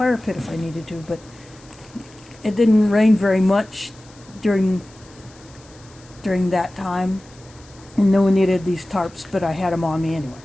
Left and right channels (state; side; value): noise; left; hiss, 26 dB below the sound